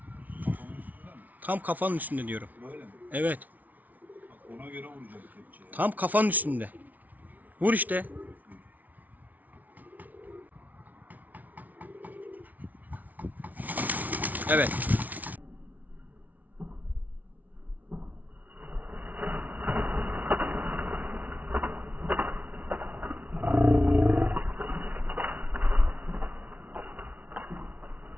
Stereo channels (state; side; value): late; left; 0.076 ms